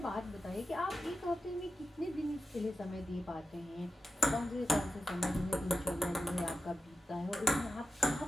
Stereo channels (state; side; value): normal; both; correlation 0.92